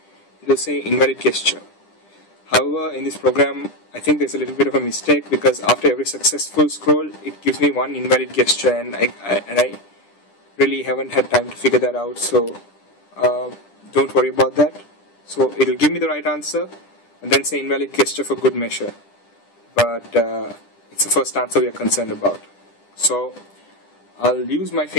it will say invalid gesture. However, in this program, I think there's a little bit of a mistake, because after every successful scroll, it gives me one invalid gesture, and I really haven't had time to figure that out. So don't worry about that. So it'll give me the right answer and then say invalid gesture for good measure, but it's the first answer we are concerned about. So I'll use my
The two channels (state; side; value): late; right; 10 ms